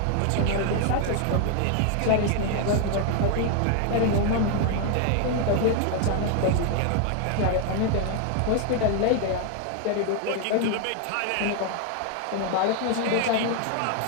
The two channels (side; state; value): both; different; correlation 0.01